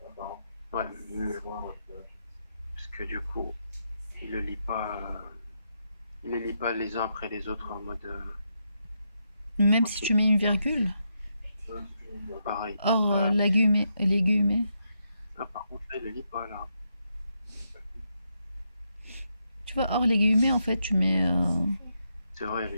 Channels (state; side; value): inverted; both; correlation -0.81